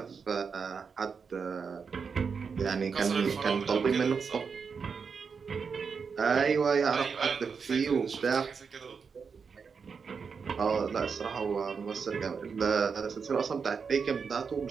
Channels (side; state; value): left; quieter; 5.7 dB